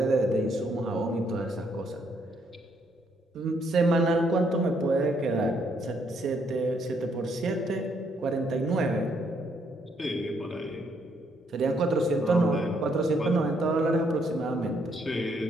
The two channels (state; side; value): normal; both; correlation 0.72